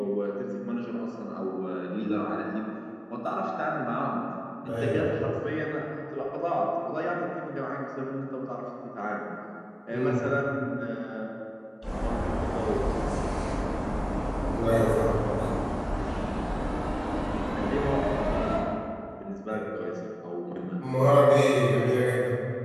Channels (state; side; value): identical; both; correlation 1.00